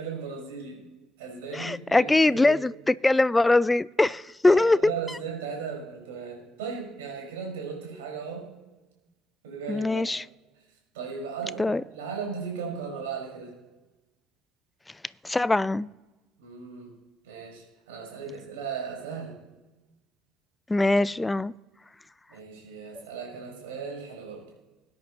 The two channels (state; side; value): normal; both; correlation 0.89